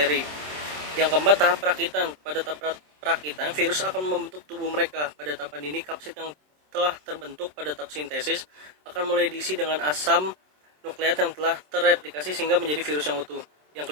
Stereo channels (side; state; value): left; late; 27 ms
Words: Yang keempat, tahap perakitan. Pada tahap perakitan, virus akan membentuk tubuh mereka. Pada tahapan ini, kapsid yang telah terbentuk pada tahap sintesis akan mulai diisi dengan asam nukleat yang telah terreplikasi sehingga menjadi virus yang utuh. Yang